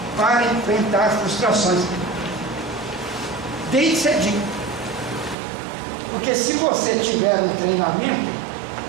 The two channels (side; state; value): left; drops out; at 5.4 s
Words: para enfrentar frustrações. Desde cedinho. Porque se você tiver um treinamento,